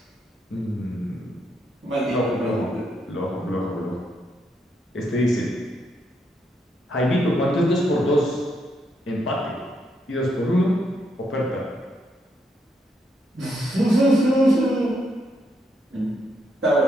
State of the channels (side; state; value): both; normal; correlation 0.77